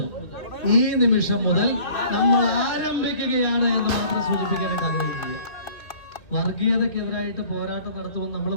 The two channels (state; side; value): late; right; 2.4 ms